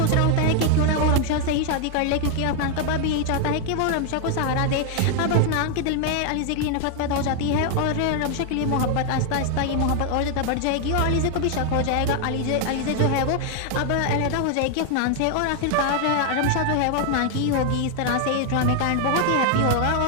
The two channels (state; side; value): different; both; correlation 0.00